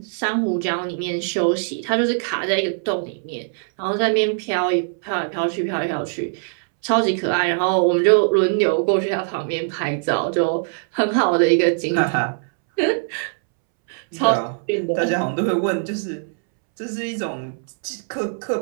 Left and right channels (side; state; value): left; silent; 65 dB below the other